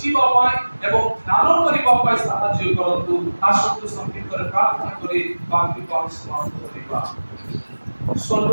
ପାଇଁ ଏବଂ ଧ୍ୟାନ କରିବା ପାଇଁ ସାହାଯ୍ୟ କରନ୍ତୁ। ଆସନ୍ତୁ ସଂକ୍ଷିପ୍ତରେ ପ୍ରାର୍ଥନା କରି ବାକ୍ୟକୁ ଆମେ ସମାପ୍ତ କରିବା।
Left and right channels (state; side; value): inverted; both; correlation -1.00